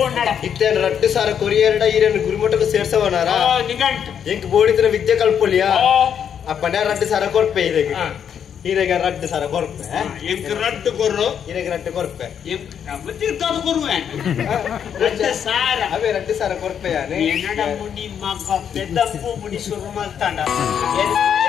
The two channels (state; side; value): quieter; right; 8.3 dB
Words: ಇತ್ತೇನು 2000 ಕೊರಿಯರ್ಡ ಈರನ್ನು ಗುರುಮಠಕ್ಕೆ ಸೇರ್ಸವನಾರ ನಿಗಂಟ್ ಎಂಕ್ ಬೋಡಿದ್ರೆ ವಿದ್ಯೆ ಕಲ್ಪೊಲಿಯಾ ಅಪ್ಪನ 2000 ಕೊರ್ಪೆ ಇದಕ್ಕೆ ಈರೆಗ 2000 ಕೊರ್ಪೆ ಎಂಕ್ ರಟ್ಟು ಕೊರು ಈರೆಗ ರಟ್ಟು ಕೊರ್ಪೆ ಮತ್ತಿರ್ತಾದ ಕೊರುವೆ 2000 ಅವೇ 2000 ಕೊರ್ಪೆ ಯಾನೆ ಏನಡ ಮುನಿ ಮಗ ಪೆದ್ದಪ್ಪು ಮುನಿ ಶುರು ಮಾಡ್ತಾಂಡ